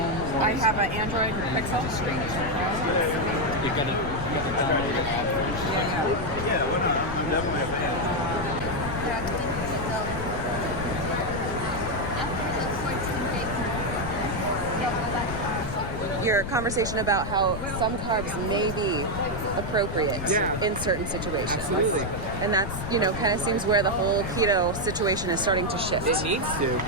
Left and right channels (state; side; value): noise; left; rumble, 6 dB below the sound